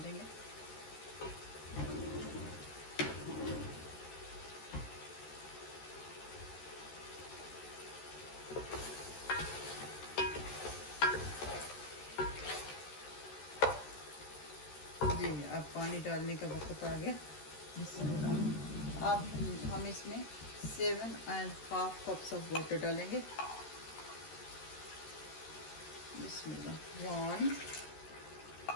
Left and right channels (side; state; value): right; late; 13 ms